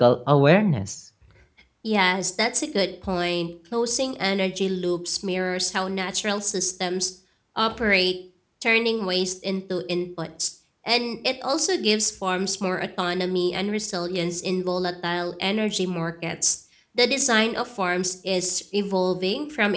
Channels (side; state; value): both; identical; correlation 1.00